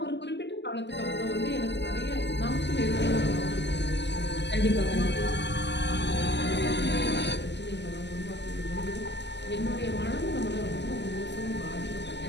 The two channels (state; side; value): late; right; 0.51 ms